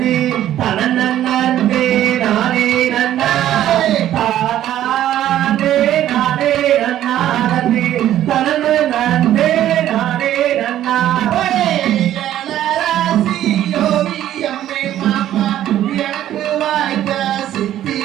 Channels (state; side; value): quieter; left; 12.2 dB